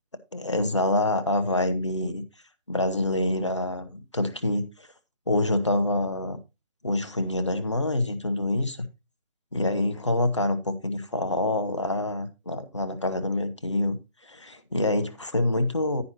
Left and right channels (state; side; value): inverted; both; correlation -0.61